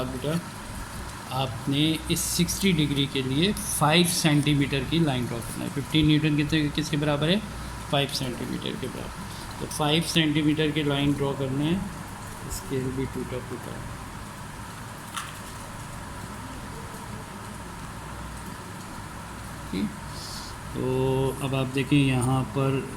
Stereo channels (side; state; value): both; identical; correlation 1.00